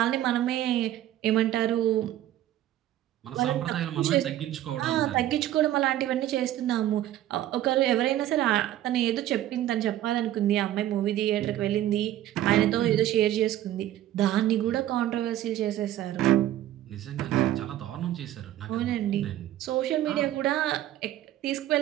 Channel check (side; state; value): left; quieter; 13.1 dB